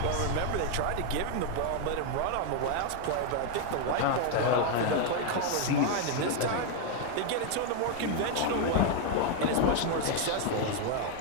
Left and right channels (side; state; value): both; different; correlation 0.01